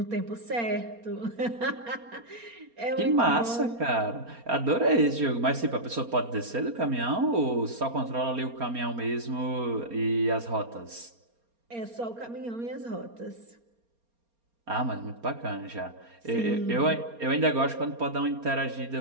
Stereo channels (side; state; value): left; late; 4.3 ms